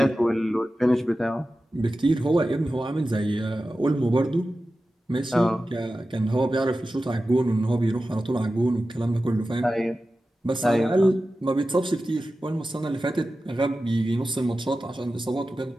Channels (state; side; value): normal; both; correlation 0.94